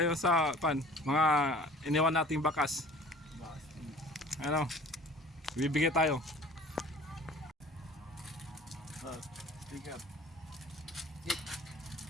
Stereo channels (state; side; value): normal; both; correlation 0.47